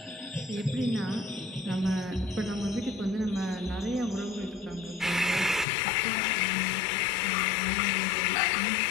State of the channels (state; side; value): drops out; right; at 5.7 s